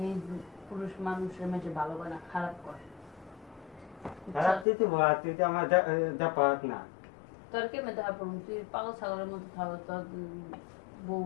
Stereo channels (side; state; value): right; drops out; at 4.7 s